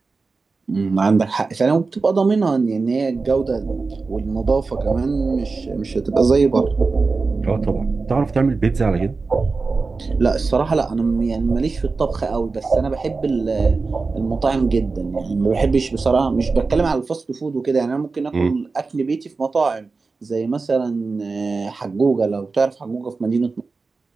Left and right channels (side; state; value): left; quieter; 4.1 dB